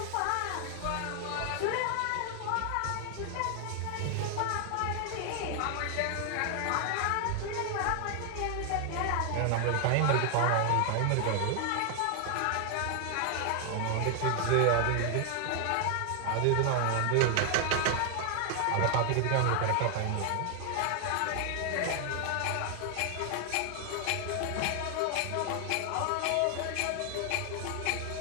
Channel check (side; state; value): both; different; correlation 0.00